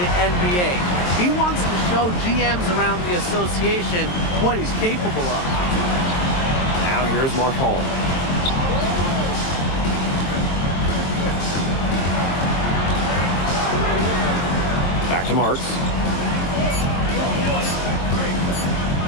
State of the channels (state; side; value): late; right; 22 ms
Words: NBA. He wants to show GMs around the association what he's capable of. Now here's Marchand. Back to Marks.